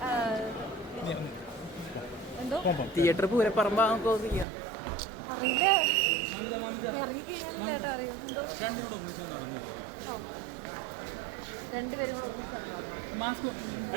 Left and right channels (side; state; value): left; drops out; at 4.5 s